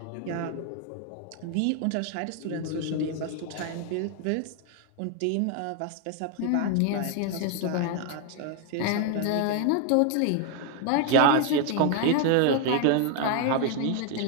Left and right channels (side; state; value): both; different; correlation 0.01